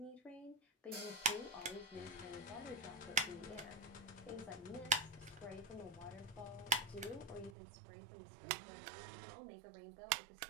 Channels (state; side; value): drops out; left; at 7.6 s